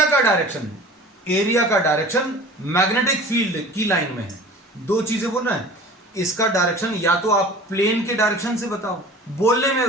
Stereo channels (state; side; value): normal; both; correlation 0.42